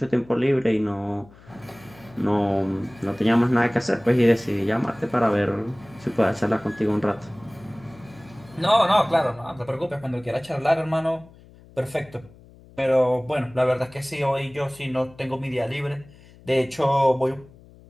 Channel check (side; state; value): left; noise; hum, 24 dB below the sound